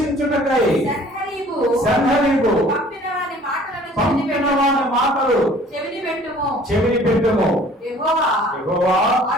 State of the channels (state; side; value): normal; both; correlation 0.52